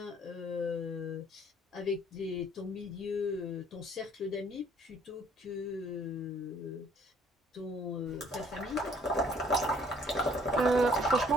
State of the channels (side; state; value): both; normal; correlation 0.60